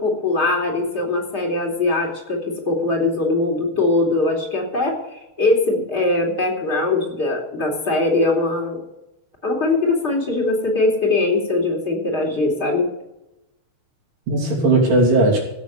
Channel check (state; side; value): late; left; 6.5 ms